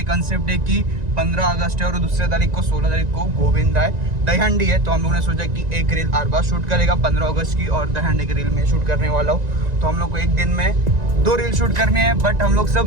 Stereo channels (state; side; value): late; left; 1.9 ms